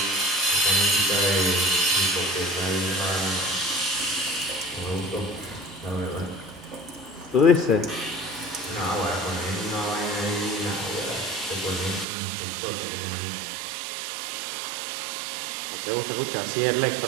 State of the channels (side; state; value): left; drops out; at 12.1 s